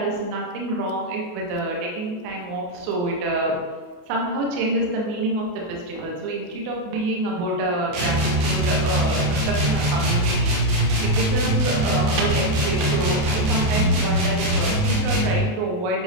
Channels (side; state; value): left; late; 28 ms